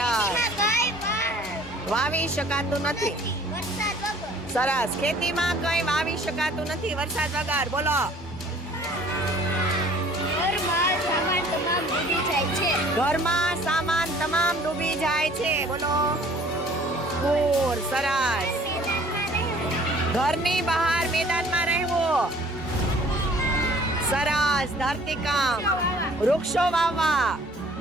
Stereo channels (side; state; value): both; normal; correlation 0.53